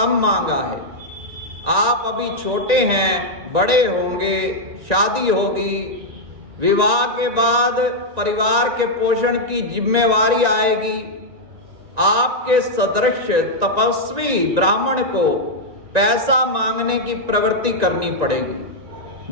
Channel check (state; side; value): late; left; 1.9 ms